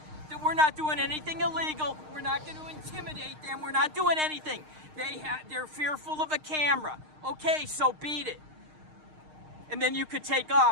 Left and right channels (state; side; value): late; left; 6.5 ms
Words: that we're not doing anything illegal. We're not going to intimidate them. We're not doing anything. They're fearful of a camera. Okay, so beat it. And then you could take